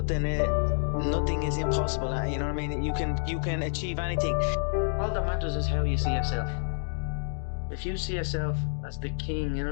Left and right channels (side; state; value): right; silent; digital silence